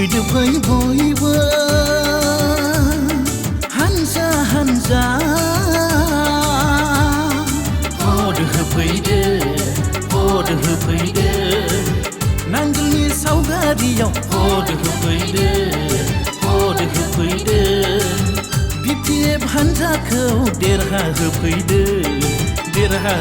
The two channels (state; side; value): identical; both; correlation 1.00